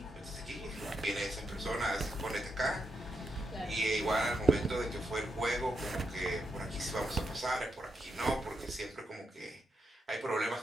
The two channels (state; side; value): normal; both; correlation 0.83